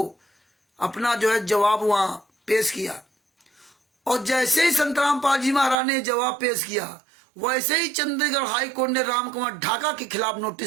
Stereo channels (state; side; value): drops out; left; at 5.8 s